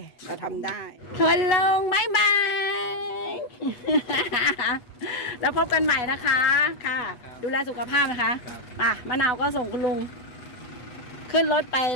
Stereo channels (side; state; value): right; late; 8.2 ms